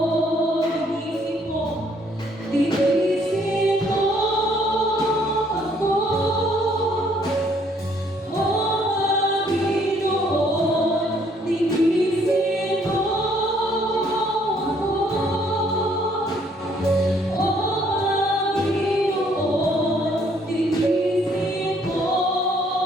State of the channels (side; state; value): both; normal; correlation 0.65